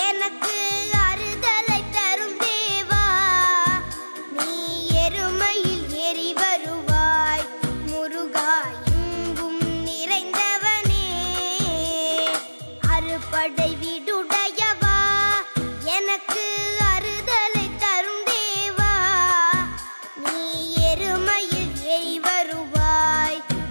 எனக்கு அறுதலை தரும் தேவா நீ எருமையில் ஏறி வருவாய் முருகா எங்கும் நிறைந்தவனே அறுபடை வீடுடையவா எனக்கு அறுதலை தரும் தேவா நீ எருமையில் ஏறி வருவாய்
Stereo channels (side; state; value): both; inverted; correlation -1.00